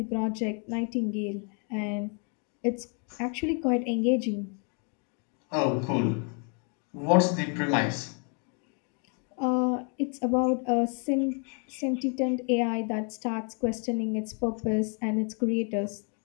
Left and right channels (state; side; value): quieter; right; 39.0 dB